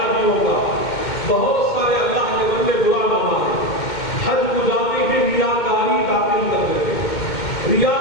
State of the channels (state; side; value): late; right; 2.2 ms